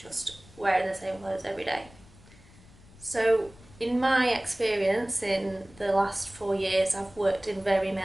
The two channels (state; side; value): noise; left; rumble, 23 dB below the sound